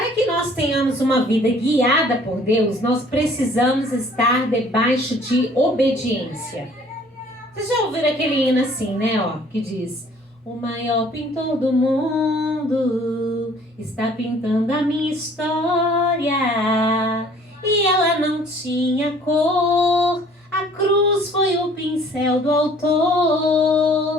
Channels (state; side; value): normal; both; correlation 0.55